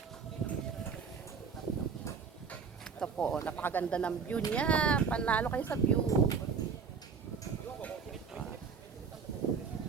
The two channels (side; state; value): left; quieter; 5.9 dB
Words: Ito po, napakaganda ng view niya. Panalo kayo sa view.